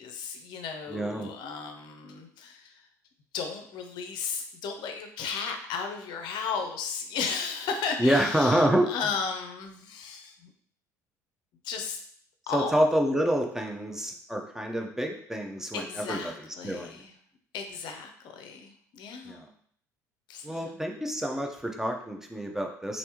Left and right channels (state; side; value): normal; both; correlation 0.72